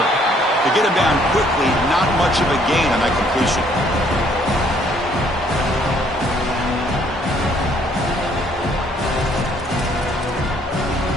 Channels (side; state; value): both; normal; correlation 0.64